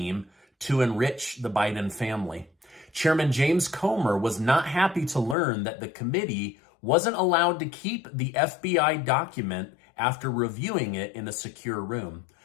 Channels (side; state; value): right; drops out; at 5.4 s